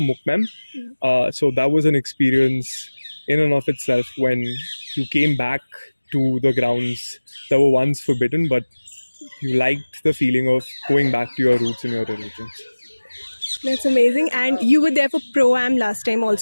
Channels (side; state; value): both; inverted; correlation -1.00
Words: Mukmem. So that was an experience in and of itself, when you came back to the grounds that were once forbidden, but you liked the feeling of going back to your roots and your religions. That's amazing. And you were there for ProAm last time